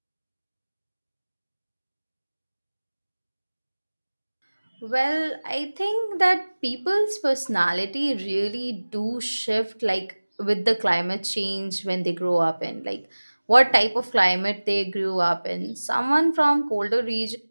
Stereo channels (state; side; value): inverted; both; correlation -1.00